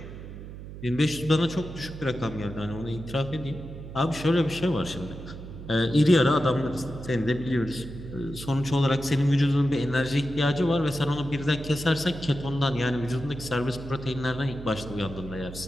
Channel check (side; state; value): right; noise; hum, 12 dB below the sound